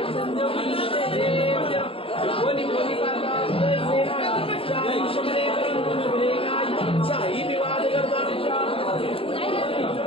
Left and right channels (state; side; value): late; right; 0.27 ms